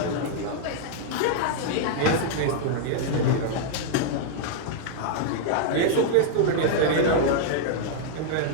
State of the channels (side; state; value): both; different; correlation -0.01